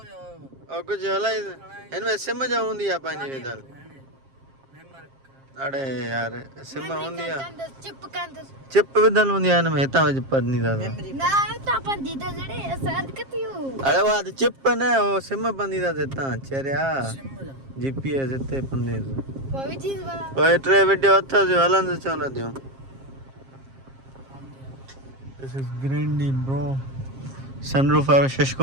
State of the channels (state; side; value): late; left; 7.5 ms